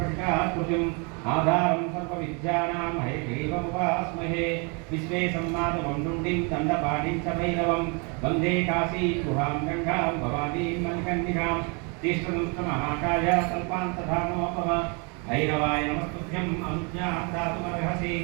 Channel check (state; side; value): quieter; left; 33.5 dB